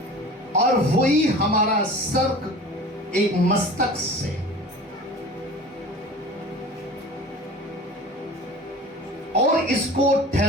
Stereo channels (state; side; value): normal; both; correlation 0.39